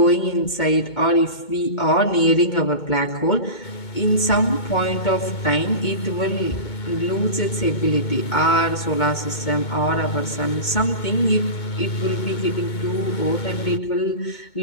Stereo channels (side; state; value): right; late; 2.2 ms